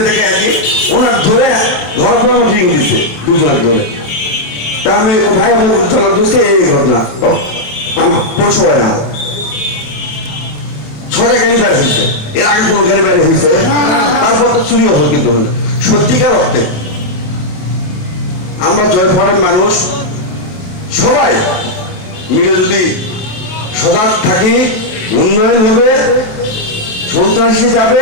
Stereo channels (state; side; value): late; right; 27 ms